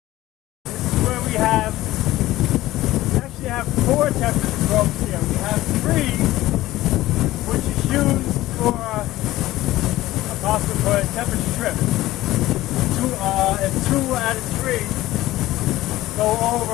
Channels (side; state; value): right; quieter; 16.3 dB